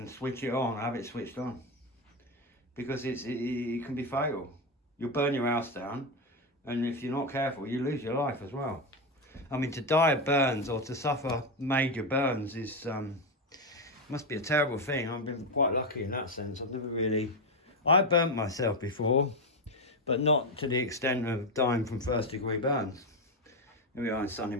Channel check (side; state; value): both; normal; correlation 0.10